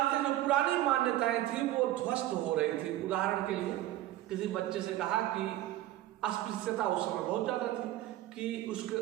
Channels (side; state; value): left; quieter; 14.6 dB